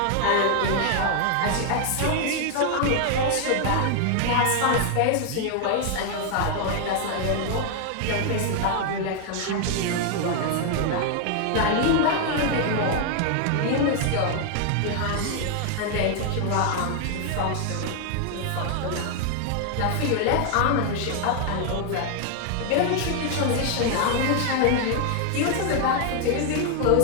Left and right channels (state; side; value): different; both; correlation 0.00